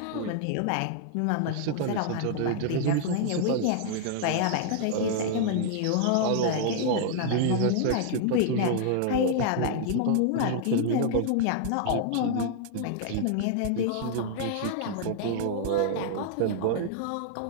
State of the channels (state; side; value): different; both; correlation -0.01